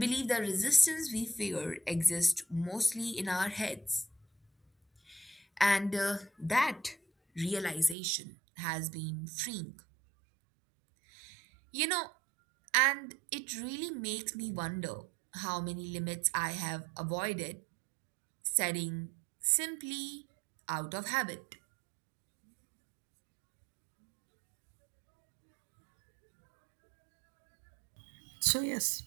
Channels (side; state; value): left; drops out; at 8.0 s